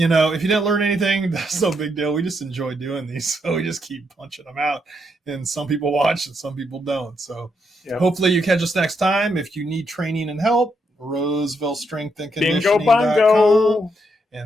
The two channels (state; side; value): normal; both; correlation 0.78